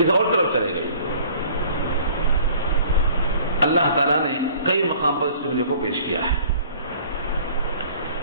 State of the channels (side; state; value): both; inverted; correlation -0.51